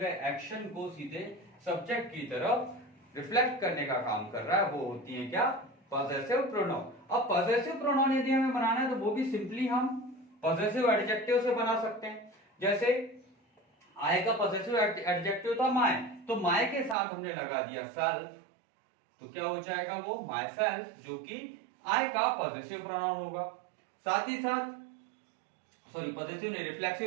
एक्शन को सीधे सब्जेक्ट की तरफ रिफ्लेक्ट करने का काम कर रहा है, वो होती है क्या, पॉसेसिव प्रोनाउन। अब पॉसेसिव प्रोनाउन यदि हमें बनाना है तो वो भी सिंपली हम पॉसेसिव एडजेक्टिव से बना सकते हैं। जैसे आई का पॉसेसिव एडजेक्टिव था माय, तो माय के साथ हमने लगा दिया सेल्फ, तो क्या हो जाएगा वो माय सेल्फ, जो कि आई का पॉसेसिव प्रोनाउन होगा। साथ ही साथ सॉरी पॉसेसिव नहीं,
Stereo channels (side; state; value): left; drops out; at 16.9 s